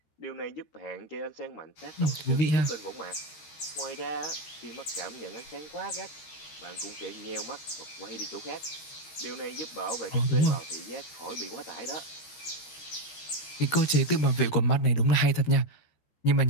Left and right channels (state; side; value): late; right; 14 ms